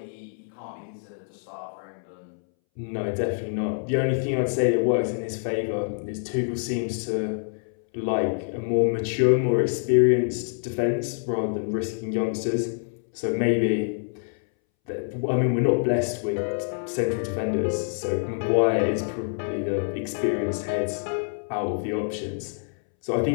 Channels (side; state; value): right; silent; 61 dB below the other